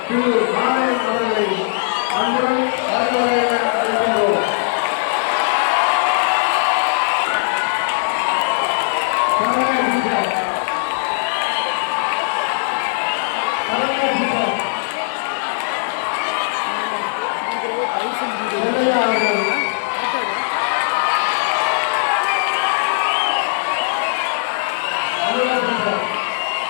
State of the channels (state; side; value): silent; right; digital silence